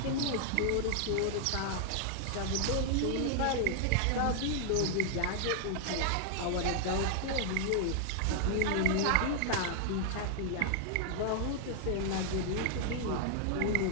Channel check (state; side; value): different; both; correlation 0.00